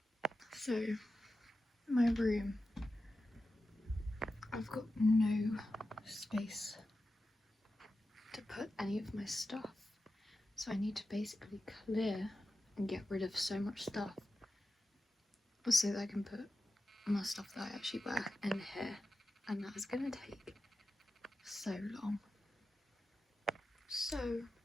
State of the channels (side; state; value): both; normal; correlation 0.92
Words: So, my room. I've got no space to put any of my stuff. So I need to basically clear and get rid of so much stuff so that I can put my stuff that I actually wear in here. And that is going to take so long. So